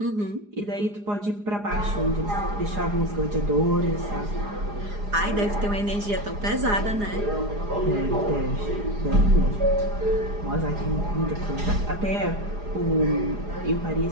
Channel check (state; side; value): late; left; 4.9 ms